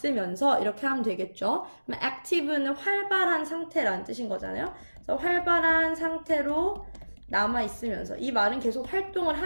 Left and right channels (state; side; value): inverted; both; correlation -1.00